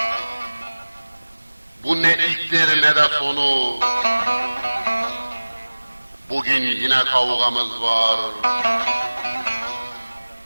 Bu ne ilktir ne de sonu, bugün yine kavgamız var,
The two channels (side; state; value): both; inverted; correlation -1.00